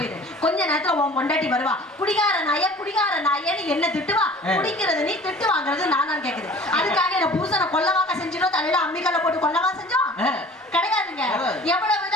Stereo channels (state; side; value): normal; both; correlation 0.46